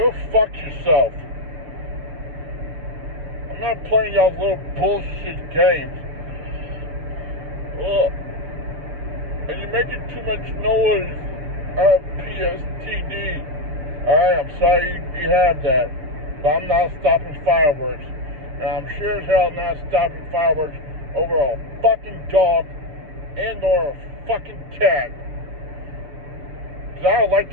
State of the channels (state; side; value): late; left; 6.7 ms